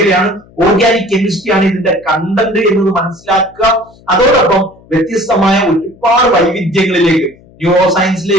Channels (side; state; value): left; noise; hum, 27 dB below the sound